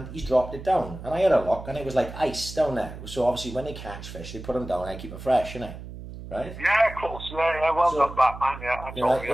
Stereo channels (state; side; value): noise; right; hum, 12 dB below the sound